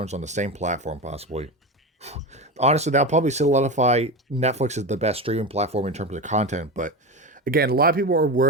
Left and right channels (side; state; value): both; normal; correlation 0.22